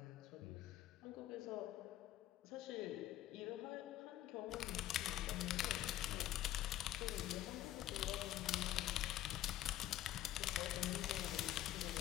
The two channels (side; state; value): right; quieter; 13.3 dB